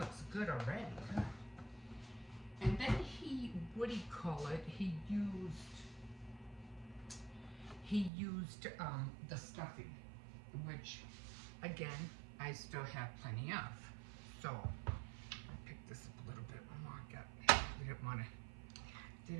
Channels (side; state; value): left; drops out; at 8.1 s